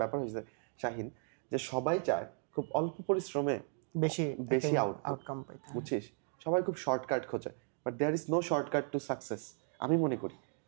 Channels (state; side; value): silent; left; 54 dB below the other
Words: ব্যাপার হয়েছে শাহিন, যে সবাই চায় খুব অল্প পরিশ্রমে বেশি আউটকাম পাইতে, বুঝছিস? সবাই খুব শর্টকাট খোঁজে, but there is no shortcut to success. আমি মনে করি